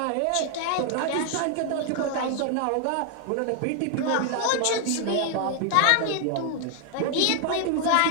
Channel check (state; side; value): different; both; correlation 0.00